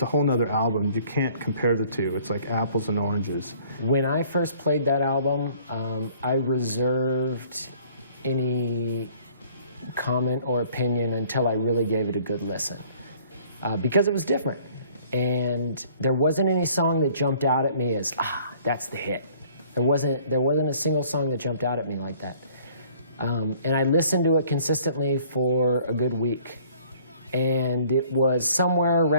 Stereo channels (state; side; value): inverted; both; correlation -0.57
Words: whole nother album. You can't compare the two. It's like apples and oranges. When I first played that album, I reserved any comment or opinion until I really gave it a good listen, because it was different. And there wasn't any song that jumped out at me as, that's the hit. There wasn't a single song that jumped out at me like that. And I listened to it consistently for a good week. And it was somewhere